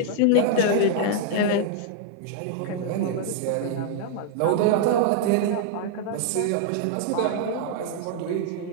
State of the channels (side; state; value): both; different; correlation -0.01